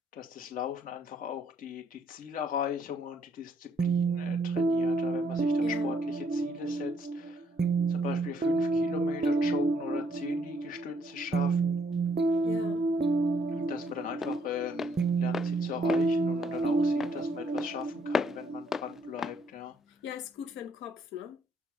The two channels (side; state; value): both; normal; correlation 0.69